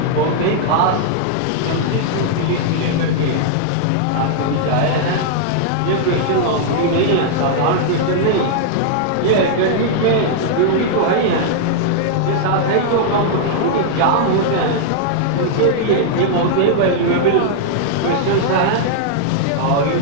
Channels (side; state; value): both; different; correlation -0.01